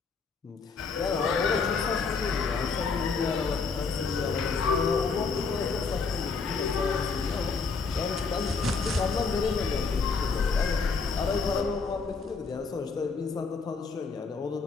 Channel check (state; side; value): quieter; right; 4.9 dB